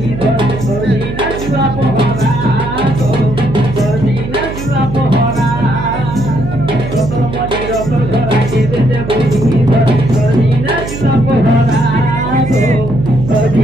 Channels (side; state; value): right; noise; hum, 8 dB below the sound